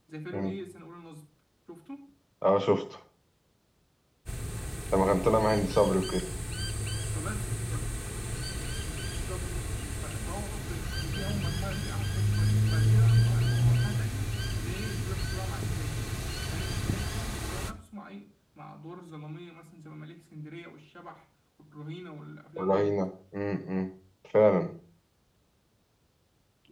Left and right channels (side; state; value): both; identical; correlation 1.00